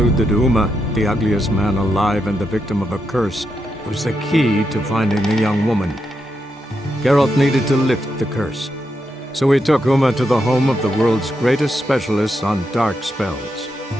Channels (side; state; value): both; normal; correlation 0.84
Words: that Uma, the ugliest man alive and the victim of a curse, was the key to finding the young woman. Geralt needed to lift the curse, so he took Uma to the home of the world's greatest specialist on dark spells,